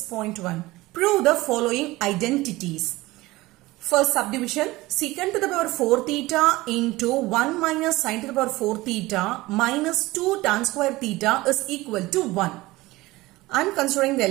6.1. Prove the following identities. First subdivision, secant to the power 4 theta into 1 minus sin to the power 4 theta minus 2 tan square theta is equal to 1. I'm considering the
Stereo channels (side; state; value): left; quieter; 19.5 dB